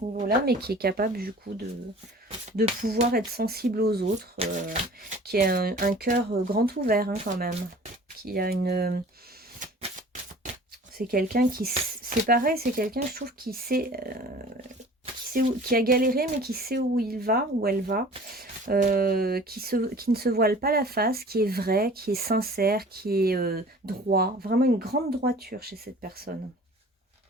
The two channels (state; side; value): normal; both; correlation 0.46